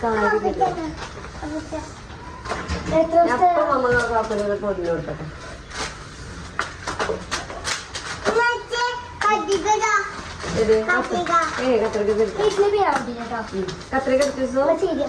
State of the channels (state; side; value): identical; both; correlation 1.00